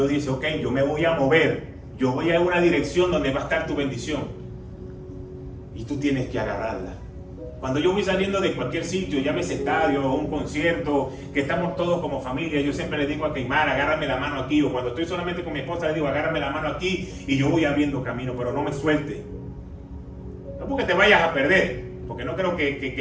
dice, ok, yo me voy a mover Yo voy a una dirección donde va a estar tu bendición. Y tú tienes que agarrarla. Cuando yo voy saliendo de cualquier sitio, llámese estadio o un concierto, que estamos todos como familia, yo siempre le digo a Keimar, agárrame la mano aquí. O cuando estoy solamente con mi esposa, le digo, agárrame la mano aquí. Y yo voy abriendo camino, pero no me suelte. No porque te vayas a perder, porque no creo que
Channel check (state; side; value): identical; both; correlation 1.00